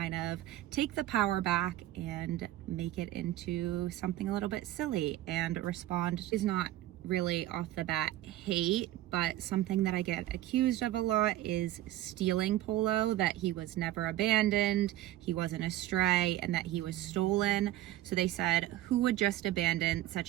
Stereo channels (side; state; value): left; quieter; 14.5 dB